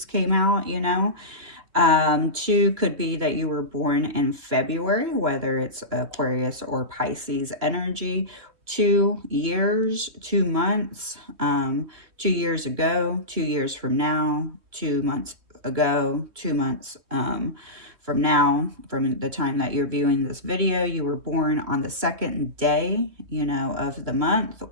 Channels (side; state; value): left; late; 3.1 ms